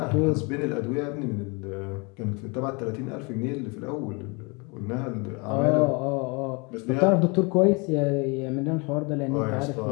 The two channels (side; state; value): right; quieter; 30.3 dB